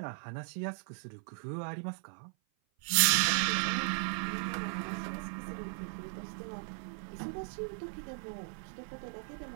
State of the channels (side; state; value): left; silent; 54 dB below the other